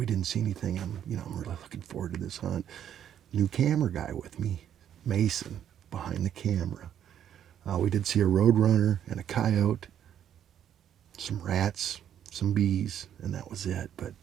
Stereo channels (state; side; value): quieter; left; 9.8 dB